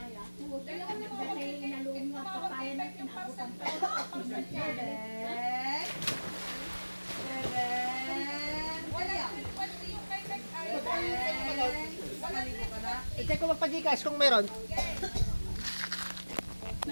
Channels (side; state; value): both; inverted; correlation -1.00